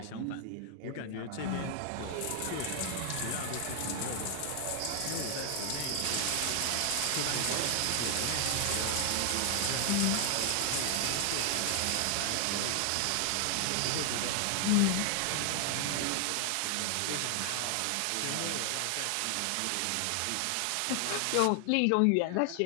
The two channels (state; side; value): different; both; correlation 0.00